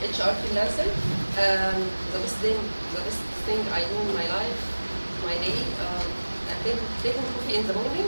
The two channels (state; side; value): inverted; both; correlation -1.00